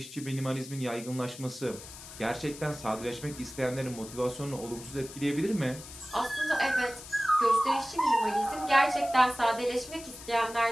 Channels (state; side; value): noise; left; hiss, 14 dB below the sound